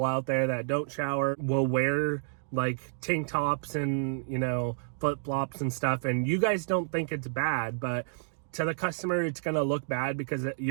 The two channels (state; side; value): silent; left; digital silence